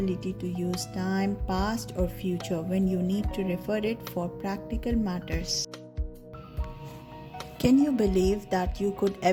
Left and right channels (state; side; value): identical; both; correlation 1.00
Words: to use time, past or future, when you need to refer it for practical matters. Can you believe that you could